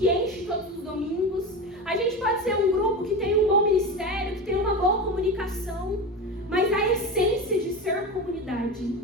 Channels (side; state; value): both; normal; correlation 0.24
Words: enche todos os domingos, a gente pode ser um grupo que tem um bom ministério, que tem uma boa comunicação, mas a essência de ser comunidade,